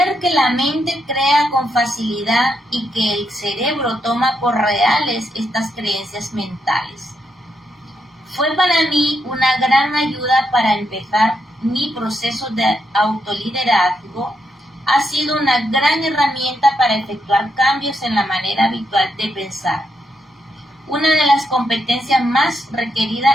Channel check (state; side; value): normal; both; correlation 0.80